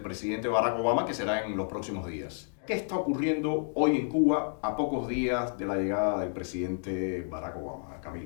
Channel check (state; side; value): silent; right; digital silence